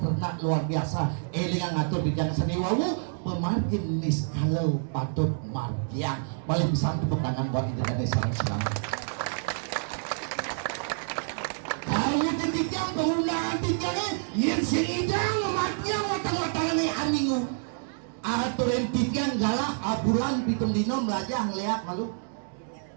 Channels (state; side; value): silent; left; digital silence